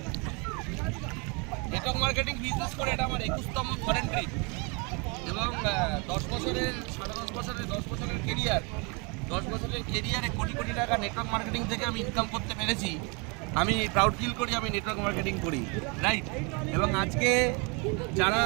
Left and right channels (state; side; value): quieter; left; 31.7 dB